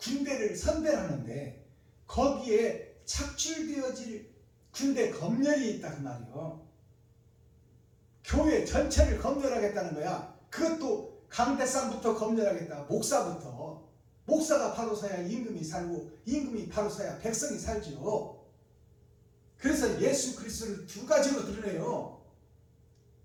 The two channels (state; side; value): identical; both; correlation 1.00